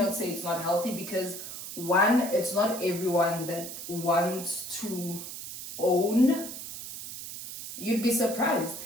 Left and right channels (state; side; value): noise; right; hiss, 9 dB below the sound